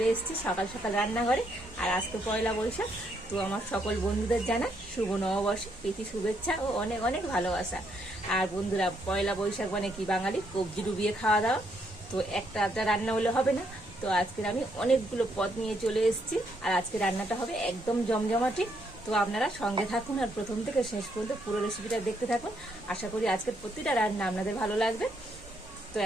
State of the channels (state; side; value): normal; both; correlation 0.74